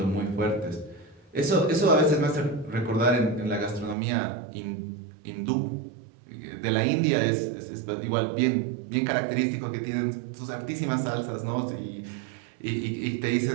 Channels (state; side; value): drops out; left; at 4.0 s